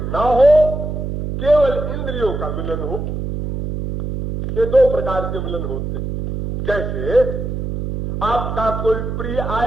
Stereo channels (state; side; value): noise; right; hum, 4 dB below the sound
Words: ना हो, केवल इंद्रियों का मिलन हो। ये दो प्रकार के मिलन होते हैं। जैसे आपका कोई प्रिय